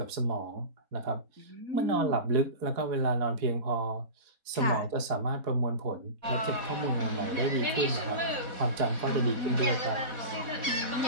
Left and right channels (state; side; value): late; left; 4.1 ms